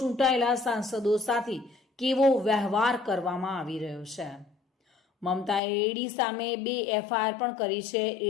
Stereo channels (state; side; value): drops out; right; at 5.6 s